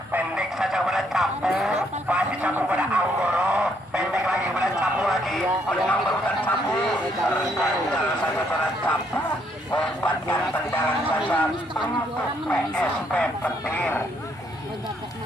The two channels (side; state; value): both; normal; correlation 0.71